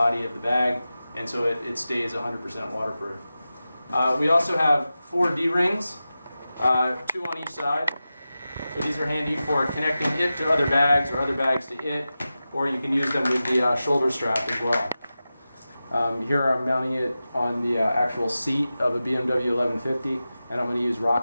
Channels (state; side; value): inverted; both; correlation -0.94